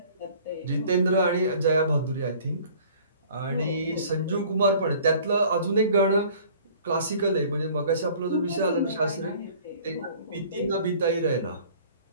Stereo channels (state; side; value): inverted; both; correlation -0.51